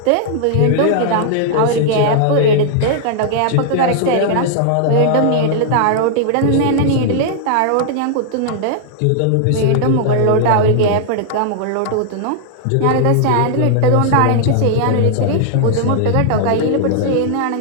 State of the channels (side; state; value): both; different; correlation -0.01